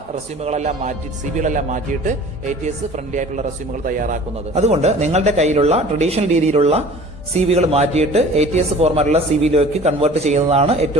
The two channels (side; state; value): both; normal; correlation 0.45